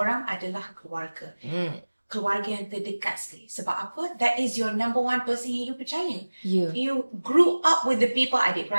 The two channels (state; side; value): inverted; both; correlation -1.00